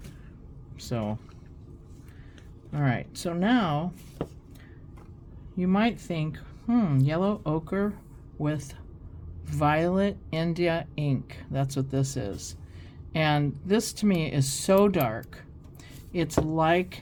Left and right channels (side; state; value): both; identical; correlation 1.00